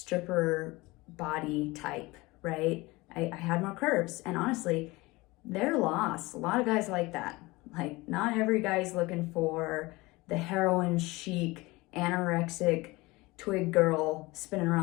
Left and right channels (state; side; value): quieter; right; 22.0 dB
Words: body type, right? I had more curves, and honestly, they're lost. A lot of guys like that. Like, not every guy's looking for the heroin chic, anorexic, twig girl spinning